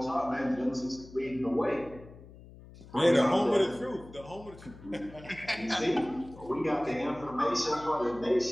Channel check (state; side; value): noise; left; hum, 19 dB below the sound